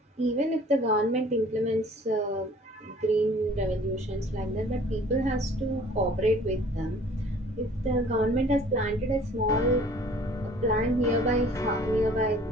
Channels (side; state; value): both; normal; correlation 0.52